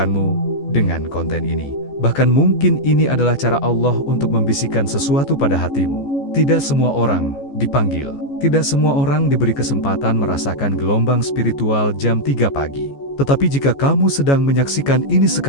dengan konten ini. Bahkan mungkin ini adalah cara Allah untuk membisikkan sesuatu pada hatimu. Tidak semua orang dipanggil. Tidak semua orang diberi kesempatan merasakan gelombang spiritual jam 3 pagi. Tetapi jika kamu sedang menyaksikan ini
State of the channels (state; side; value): late; right; 14 ms